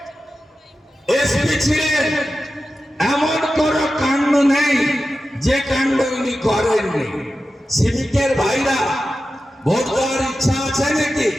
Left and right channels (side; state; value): both; normal; correlation 0.93